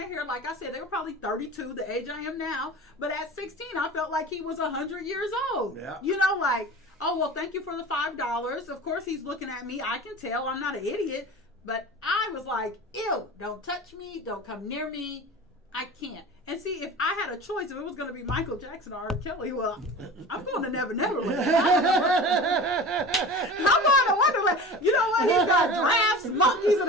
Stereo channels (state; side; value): normal; both; correlation 0.35